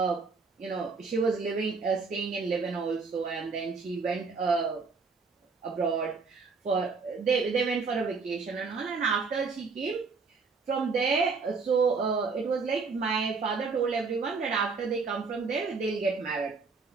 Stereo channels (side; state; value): left; quieter; 4.7 dB